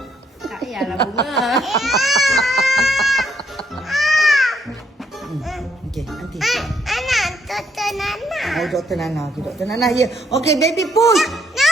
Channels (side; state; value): both; normal; correlation 0.71